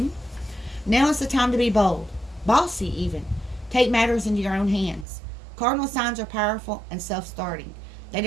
Now is the time to be bold, bossy even. Take matters into your own hands. Cardinal signs are powerful and self-starting.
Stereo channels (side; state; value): left; drops out; at 5.1 s